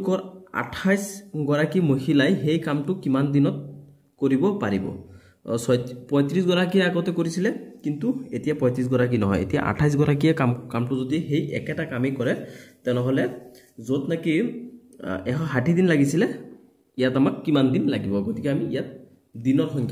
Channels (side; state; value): both; identical; correlation 1.00